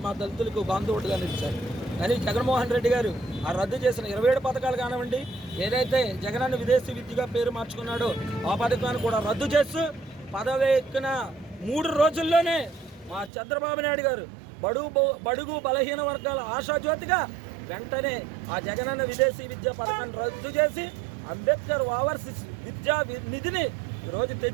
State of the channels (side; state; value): left; drops out; at 13.3 s